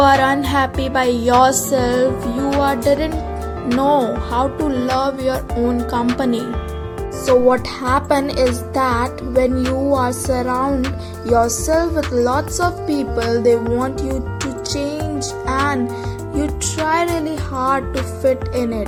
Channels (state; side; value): identical; both; correlation 1.00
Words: unhappy by yourself. You didn't know how to love your own company. So what happen is that when you are surround yourself with lots of people, they want you to change and you try really hard to fit in it.